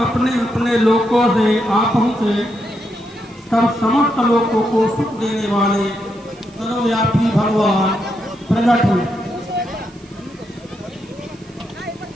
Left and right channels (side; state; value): right; noise; hiss, 28 dB below the sound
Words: अपने अपने लोकों से आ पहुँचे, तब समस्त लोकों को सुख देने वाले सर्वव्यापी भगवान प्रकट हुए।